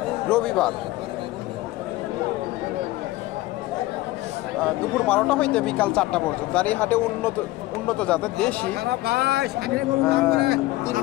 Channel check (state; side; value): quieter; right; 18.1 dB